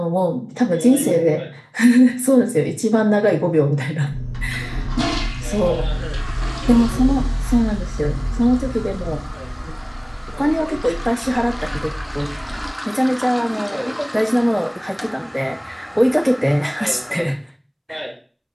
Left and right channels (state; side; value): identical; both; correlation 1.00